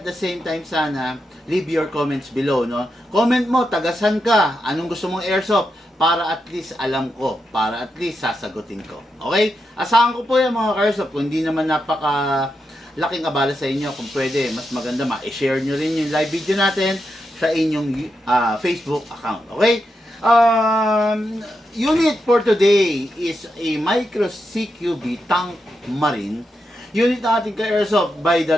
the same time sana leave your comments below, no? Comment mo, tagasan ka, anong gusto mong airsoft para at least alam ko, para at least sasagutin ko. Okay? Asahan ko po yan mga airsoft, kung hindi naman napaka laking abala sa inyo, kung pwede, mas maganda ma-share nyo rin yung live video natin sa inyong Facebook account. Okay? Unit for today is a Micro CQB Tank Marine. Unit na ating ka-airsoft by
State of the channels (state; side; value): normal; both; correlation 0.86